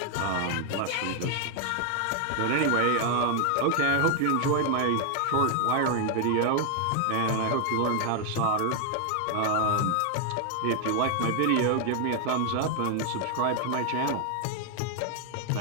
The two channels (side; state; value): both; different; correlation 0.00